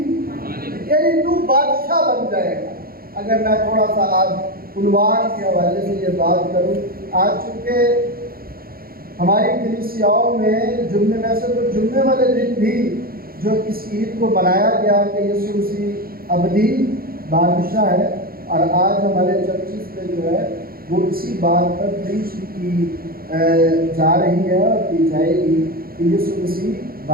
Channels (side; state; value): left; late; 0.43 ms